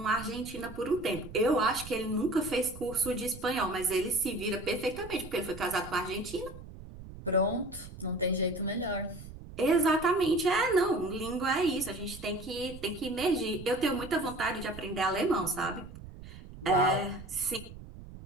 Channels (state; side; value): noise; right; rumble, 14 dB below the sound